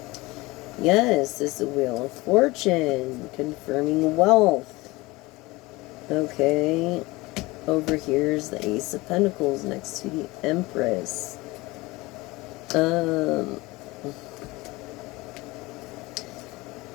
Yes, this is the Wheel of Fortune, confirming wealth. Okay, over here is the Ace of Pentacles next to the Empress.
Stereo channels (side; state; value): right; quieter; 21.6 dB